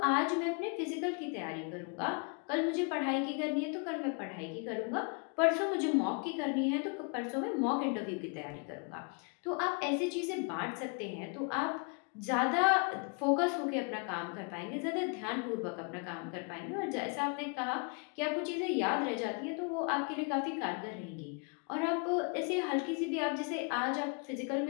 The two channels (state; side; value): quieter; right; 36.3 dB